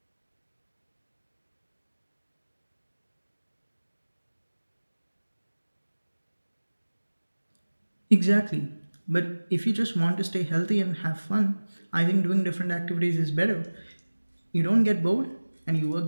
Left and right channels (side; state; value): both; inverted; correlation -1.00